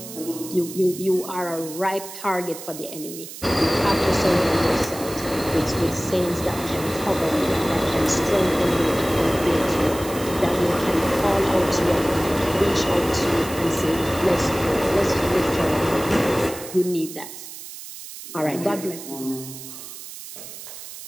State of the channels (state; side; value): noise; right; hiss, 12 dB below the sound